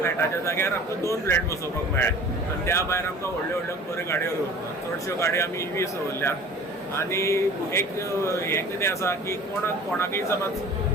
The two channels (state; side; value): normal; both; correlation 0.45